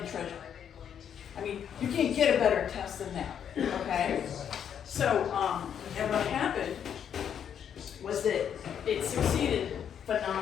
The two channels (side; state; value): right; quieter; 8.6 dB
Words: treasure. I mean, you can't get a better test than that, okay? So, and what happened was that it succeeded